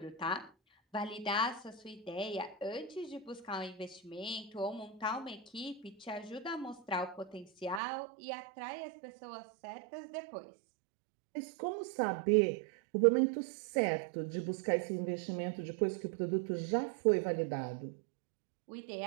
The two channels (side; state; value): left; drops out; at 7.8 s